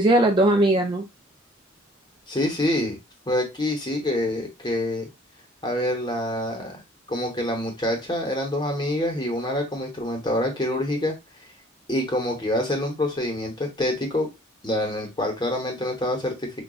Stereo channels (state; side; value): normal; both; correlation 0.55